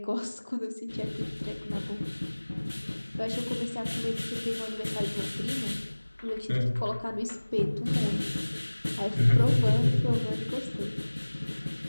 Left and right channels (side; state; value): both; inverted; correlation -1.00